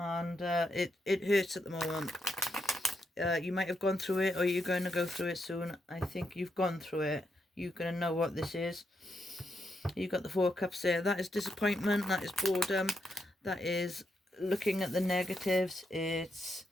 it hurts at the moment. You might have gone through it, or you're going to go through it soon. I think you've gone through it. You're going to know what this is. You've got the Four Cups there. That is disappointment. That is boredom. That is looking at the negatives. It's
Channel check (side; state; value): both; normal; correlation 0.81